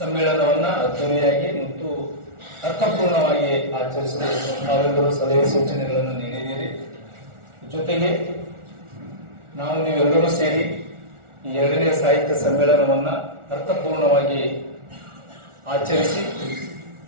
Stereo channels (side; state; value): left; late; 1.4 ms